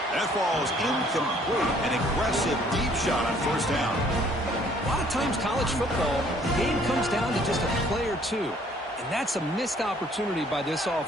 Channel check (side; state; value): both; normal; correlation 0.60